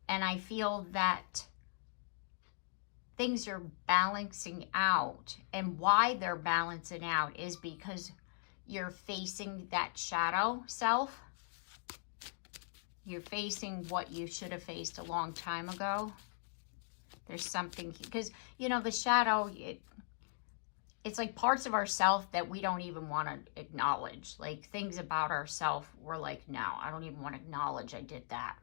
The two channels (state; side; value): silent; right; digital silence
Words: And I feel that things are balancing out, and why they're balancing out is because you're facing that shadow self. You're facing what you should have faced a long time ago. There's something, because, you know, the shadow, it's like parts of ourself that we don't even want to acknowledge. Like things about ourself, we're like, no, I don't even want to acknowledge I did that,